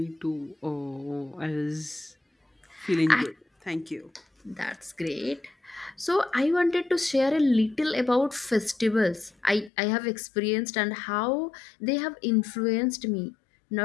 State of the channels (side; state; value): right; drops out; at 9.7 s